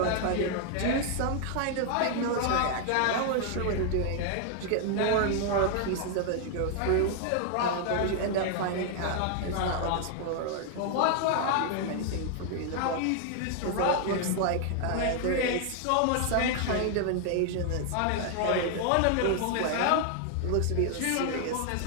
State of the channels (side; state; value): both; different; correlation 0.00